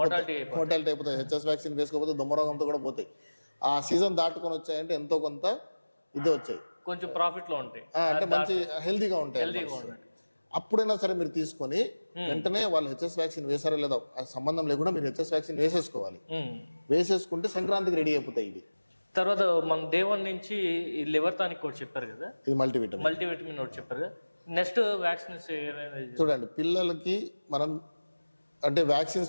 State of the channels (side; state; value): both; inverted; correlation -1.00